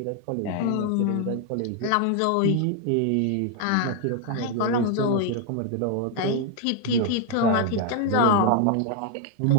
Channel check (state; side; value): different; both; correlation 0.00